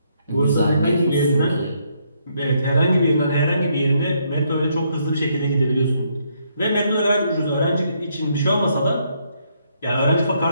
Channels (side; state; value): both; inverted; correlation -0.73